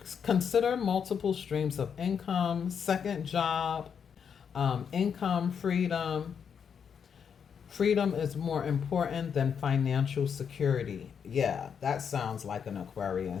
Consider multiple streams of income, second job, income, freedom. Freedom is more important than financial security. Yeah, that sounds like an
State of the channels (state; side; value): quieter; right; 7.2 dB